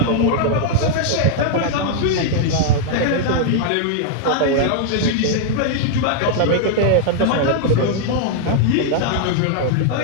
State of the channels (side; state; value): both; different; correlation -0.01